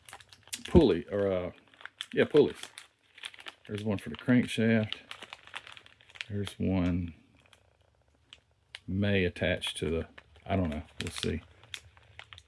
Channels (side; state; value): both; identical; correlation 1.00